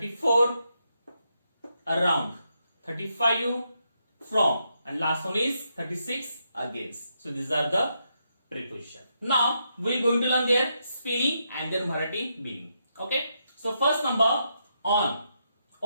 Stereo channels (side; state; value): both; inverted; correlation -0.81